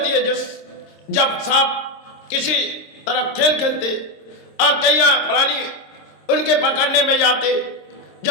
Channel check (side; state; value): right; late; 26 ms